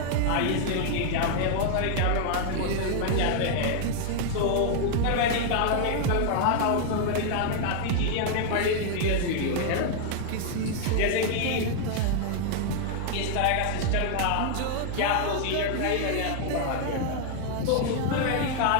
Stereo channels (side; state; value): both; different; correlation 0.00